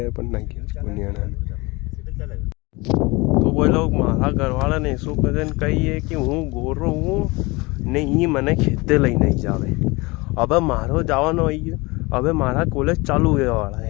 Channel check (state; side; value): quieter; right; 24.3 dB